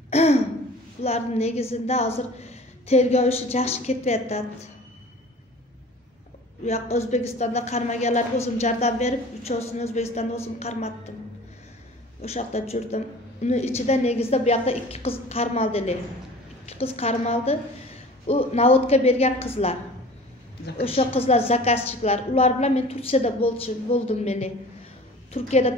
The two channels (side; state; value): both; normal; correlation 0.43